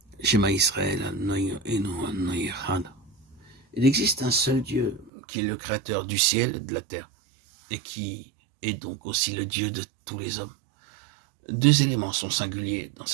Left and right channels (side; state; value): left; drops out; at 5.1 s